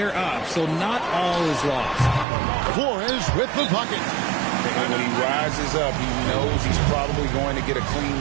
up, so not all is lost. Flores with the bucket. And when he rises up, he knows he's probably going to get a clean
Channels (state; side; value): drops out; left; at 2.2 s